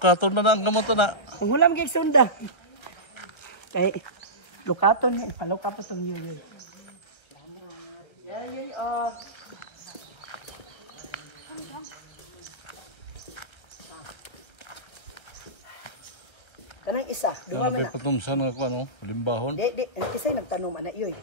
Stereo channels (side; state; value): right; late; 1.3 ms